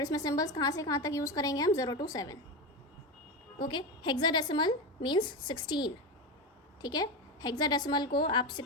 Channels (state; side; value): normal; both; correlation 0.18